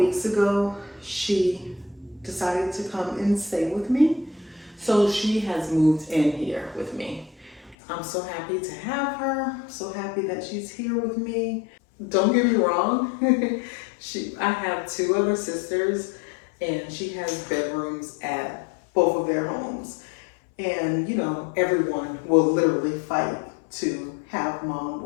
ago, she decided to come and stay with me. So she has moved in here with me. I'm so happy to have her, so happy that she's here with me. Don't get me wrong, I have 2 other sisters and she has bedrooms at both of their homes. And you know, everyone will literally fight to have mom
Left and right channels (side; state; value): right; drops out; at 7.8 s